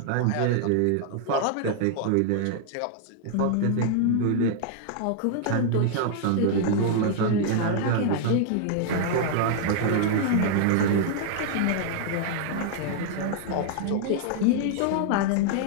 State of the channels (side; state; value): both; different; correlation 0.00